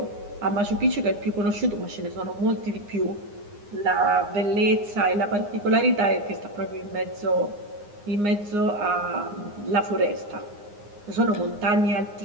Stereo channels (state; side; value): late; left; 9.7 ms